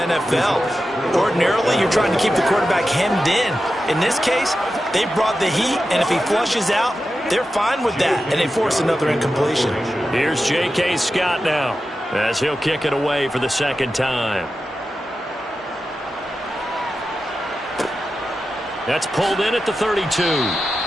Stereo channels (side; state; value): both; normal; correlation 0.91